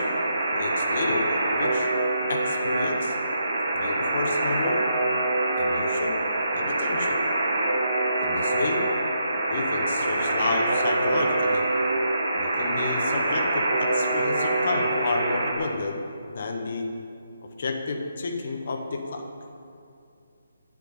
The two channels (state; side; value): inverted; both; correlation -0.78